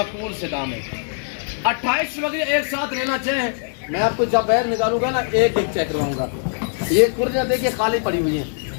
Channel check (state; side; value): silent; right; 65 dB below the other